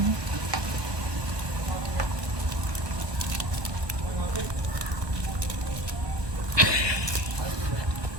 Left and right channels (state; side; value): late; left; 1.1 ms